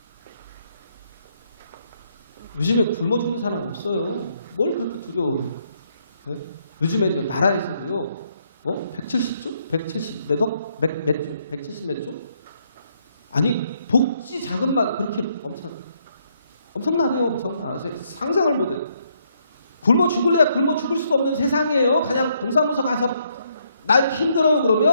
요즘에 굶어 죽는 사람 없어요. 뭘 그렇게 두려워해요? 네? 요즘에 나라에서도요, 170조? 170 몇 억? 몇 조? 170 몇 조? 아니, 복지 자금만 그렇게 엄청나대요. 엄청나. 상상을 못해요. 굶어 죽을래야 굶어 죽을 수도 없는 세상이에요. 그냥 동사무소 가서 나 힘들어요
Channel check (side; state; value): both; inverted; correlation -0.73